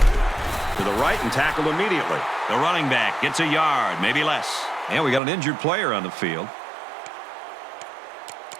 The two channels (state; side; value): drops out; left; at 5.2 s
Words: To the right and tackled immediately. The running back gets a yard, maybe less. And we got an injured player on the field.